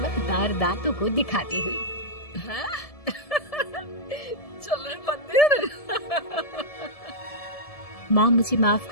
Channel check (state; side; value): late; right; 1.7 ms